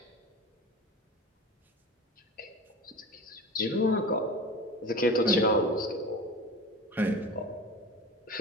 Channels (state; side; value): normal; both; correlation 0.34